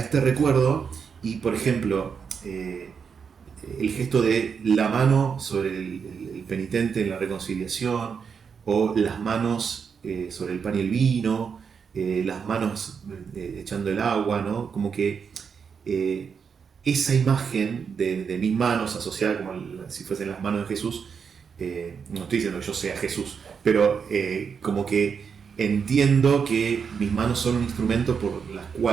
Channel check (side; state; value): left; quieter; 6.4 dB